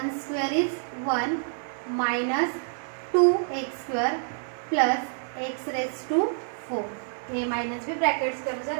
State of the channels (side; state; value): left; silent; digital silence